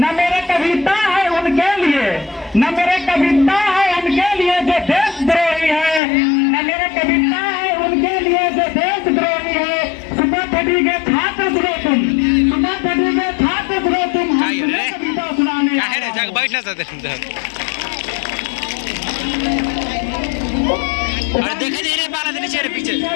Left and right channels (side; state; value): right; drops out; at 6.0 s